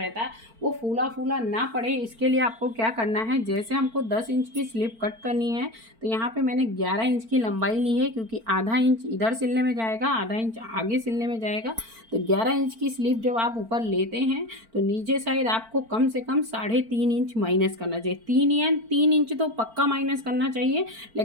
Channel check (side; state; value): left; late; 4.4 ms